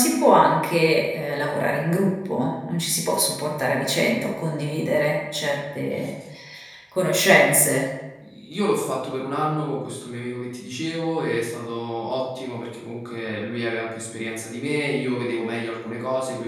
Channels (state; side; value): identical; both; correlation 1.00